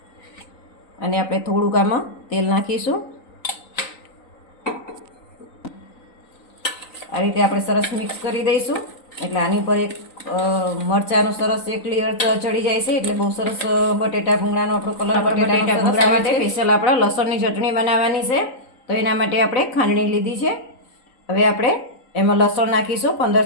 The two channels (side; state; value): right; late; 3.9 ms